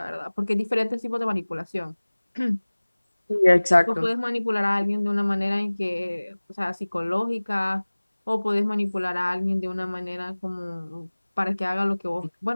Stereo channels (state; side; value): inverted; both; correlation -1.00